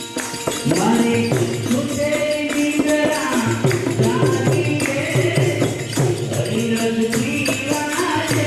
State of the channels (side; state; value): both; identical; correlation 1.00